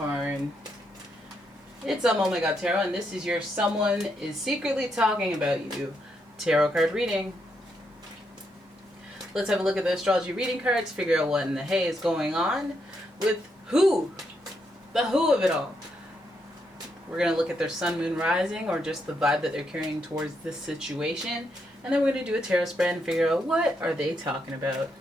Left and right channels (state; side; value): normal; both; correlation 0.79